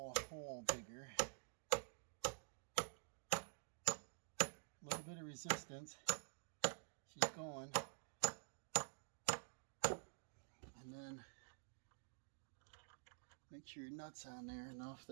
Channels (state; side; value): silent; left; digital silence